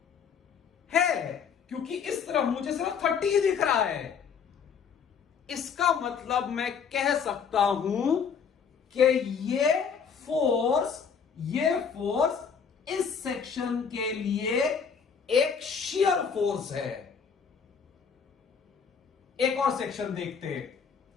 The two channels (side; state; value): right; quieter; 6.5 dB